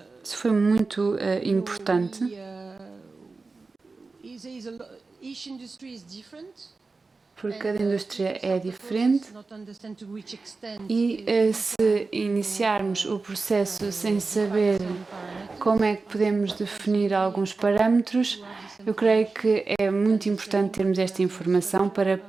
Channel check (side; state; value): left; quieter; 3.9 dB